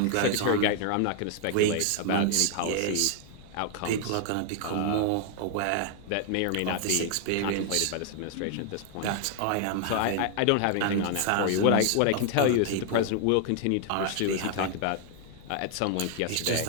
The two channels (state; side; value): different; both; correlation 0.00